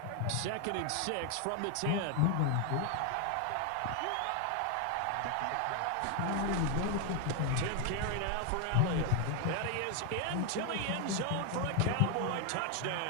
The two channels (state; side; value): different; both; correlation 0.01